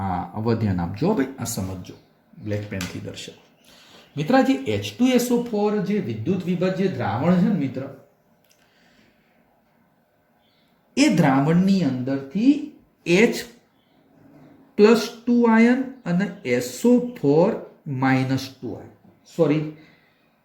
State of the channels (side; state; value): both; identical; correlation 1.00